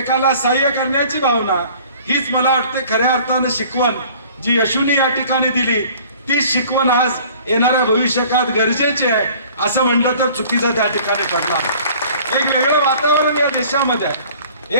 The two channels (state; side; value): inverted; both; correlation -0.50